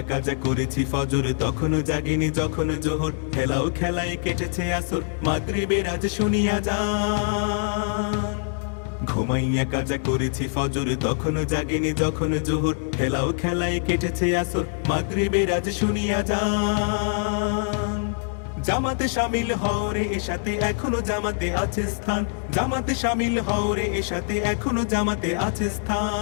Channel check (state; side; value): silent; right; digital silence